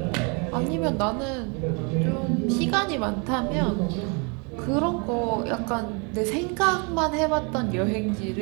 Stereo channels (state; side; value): quieter; left; 33.5 dB